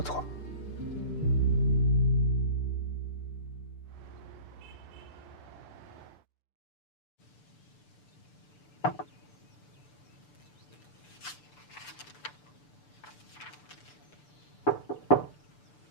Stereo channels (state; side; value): late; right; 6.8 ms